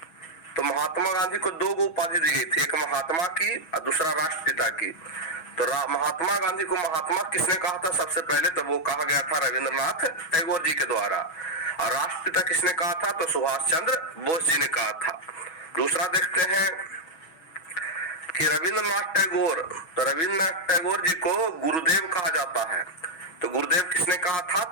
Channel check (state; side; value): late; right; 6.1 ms